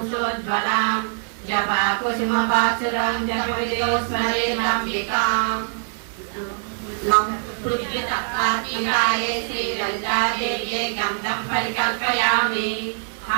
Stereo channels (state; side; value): silent; left; 58 dB below the other